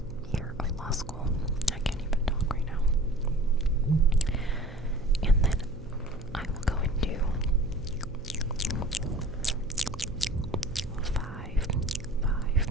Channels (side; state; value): right; noise; hum, 16 dB below the sound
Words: year of law school. I can't even talk right now. And then I will go into